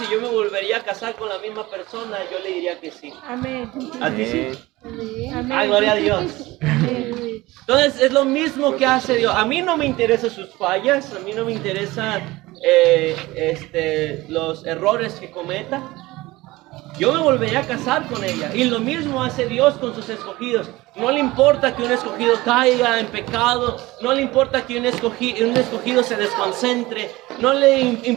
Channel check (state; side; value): quieter; left; 19.6 dB